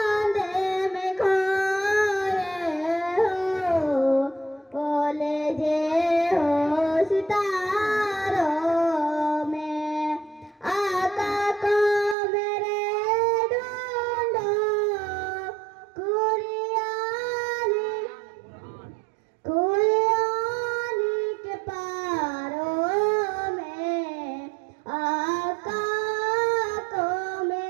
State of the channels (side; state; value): left; drops out; at 12.2 s